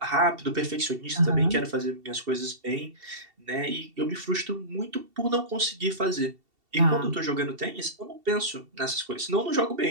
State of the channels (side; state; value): left; late; 2.7 ms